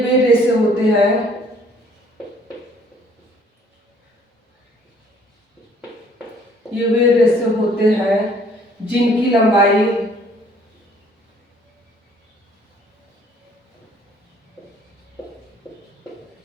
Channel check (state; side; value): normal; both; correlation 0.59